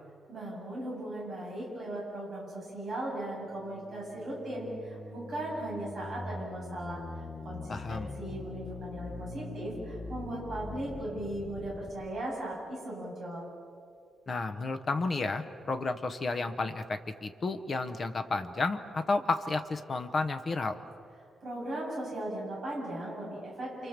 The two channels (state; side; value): normal; both; correlation 0.85